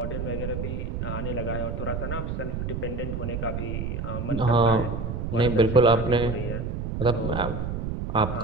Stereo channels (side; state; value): right; noise; rumble, 3 dB below the sound